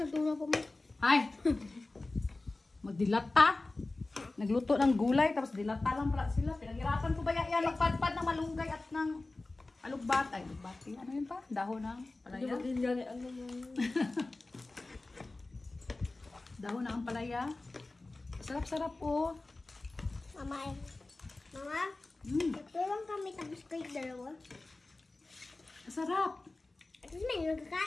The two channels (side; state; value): right; quieter; 3.1 dB